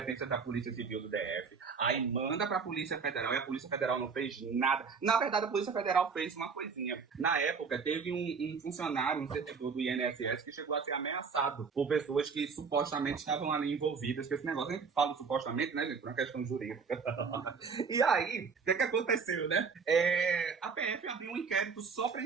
da Polícia Civil do DF, aí manda para a Polícia Federal e a Polícia Federal não fez nada. Na verdade, a Polícia Federal fez uma coisinha. Na época, teve um funcionário, um servidor do INSS que chegou a ser ameaçado por pessoas que supostamente estavam ali envolvidas com esse negócio. A gente fala supostamente, né, gente, por uma questão jurídica. E aí, o que aconteceu, né? A PF abriu um inquérito só para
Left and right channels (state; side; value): quieter; left; 5.4 dB